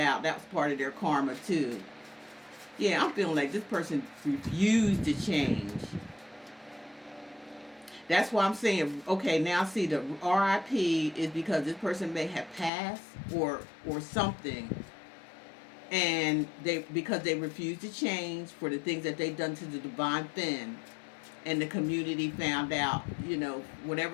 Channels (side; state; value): right; drops out; at 12.7 s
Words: That was part of their karma too. Yeah, I'm feeling like this person refused to change. That's why I'm saying, okay, now see the RIP is because this person may have passed or something, and because they refused to change for the things that they've done to the divine fin, and the community found out, you know,